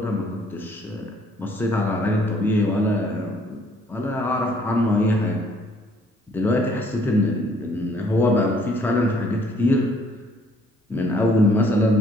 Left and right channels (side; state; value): both; normal; correlation 0.63